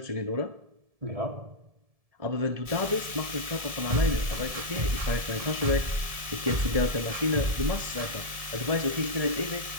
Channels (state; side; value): late; left; 1.7 ms